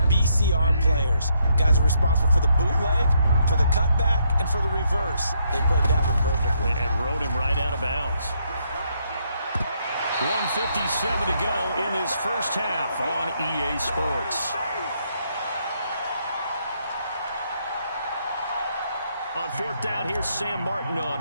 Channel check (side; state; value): both; inverted; correlation -0.74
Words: BCR players. Guys are responsible for the bootleg, for the cutback, and for the reverse. They played that one perfectly. And rode him right out of bounds. 1:57 to go in this first half on EA Sports. On 4th down, here's Sam Martin on